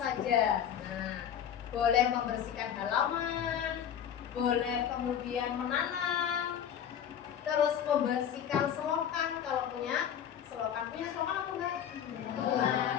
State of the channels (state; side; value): quieter; right; 9.1 dB